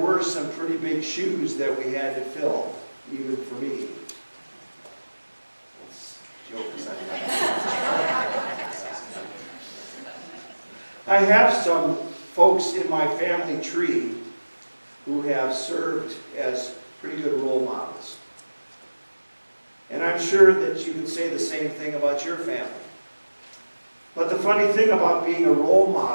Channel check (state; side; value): inverted; both; correlation -1.00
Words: some pretty big shoes that we had to fill, even for me. I have some folks in my family tree who have served as pretty good role models. And I'm sure that you can say the same thing about your family. But the funny thing about being a role